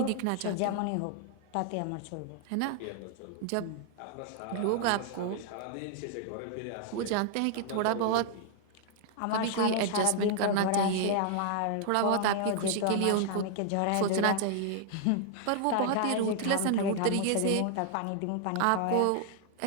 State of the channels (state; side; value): different; both; correlation 0.00